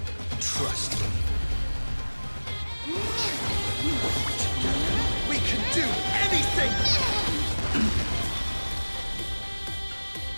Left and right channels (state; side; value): inverted; both; correlation -1.00